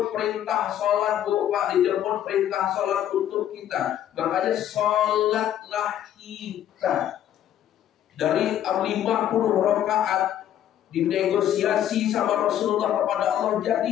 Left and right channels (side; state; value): right; quieter; 11.1 dB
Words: perintah sholat, Pak, dijemput perintah sholat untuk kita. Makanya sholatlah kita. Dari 50 rakaat dinegosiasi sama Rasulullah kepada Allah